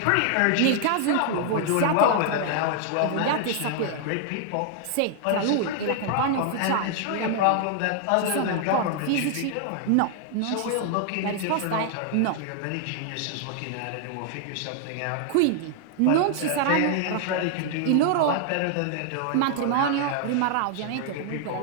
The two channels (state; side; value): different; both; correlation 0.00